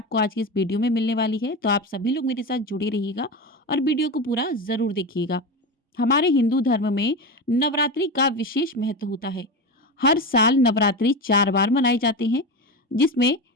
आज की इस वीडियो में मिलने वाली है, तो आप सभी लोग मेरे साथ जुड़े रहिएगा और वीडियो को पूरा जरूर देखिएगा। हमारे हिंदू धर्म में नवरात्रि का विशेष महत्व होता है। हर साल नवरात्रि 4 बार मनाए जाते हैं, जिसमें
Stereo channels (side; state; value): both; normal; correlation 0.21